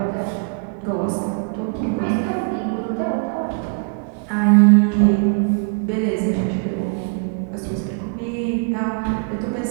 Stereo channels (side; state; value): left; quieter; 38.4 dB